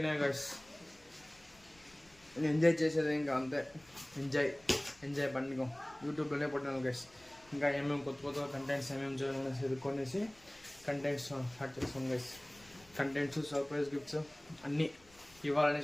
గైస్. ఎంజాయ్ చేసేది ఇంకా అంతే. ఎంజాయ్ పండుగ యూట్యూబ్లోనే పట్టాను గైస్. ఇంకా ఏమేమి కొత్త కంటెంట్స్ ఏమేమి చేయాలనేసి ఎదుర్కొనేసి కంటెంట్స్ స్టార్ట్ చేస్తాం గైస్. కంటెంట్స్, సర్ప్రైజ్ గిఫ్ట్స్ అన్నీ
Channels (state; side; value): noise; left; rumble, 27 dB below the sound